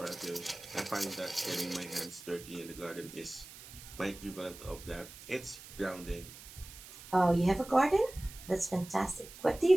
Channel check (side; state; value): right; noise; hiss, 16 dB below the sound